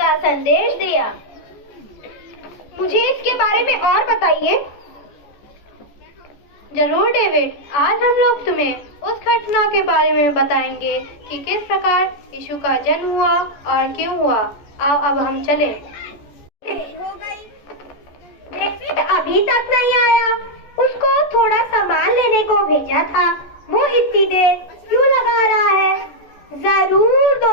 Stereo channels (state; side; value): late; right; 14 ms